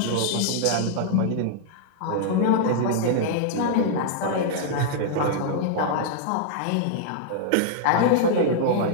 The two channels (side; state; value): both; different; correlation -0.01